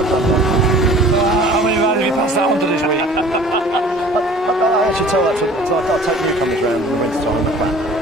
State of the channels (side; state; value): both; normal; correlation 0.48